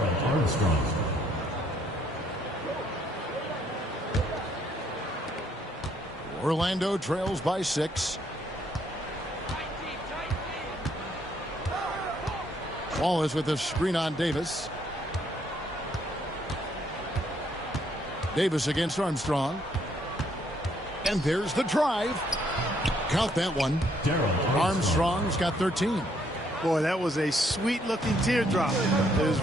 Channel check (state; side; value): normal; both; correlation 0.69